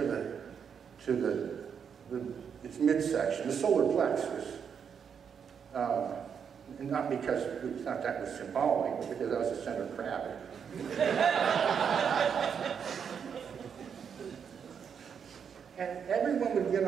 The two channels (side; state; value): left; quieter; 7.2 dB